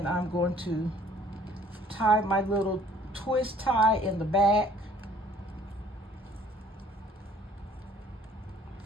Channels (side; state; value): both; normal; correlation 0.57